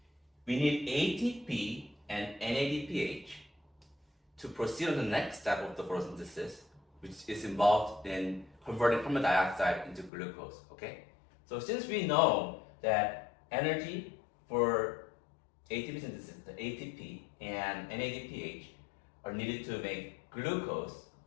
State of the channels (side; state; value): right; drops out; at 10.1 s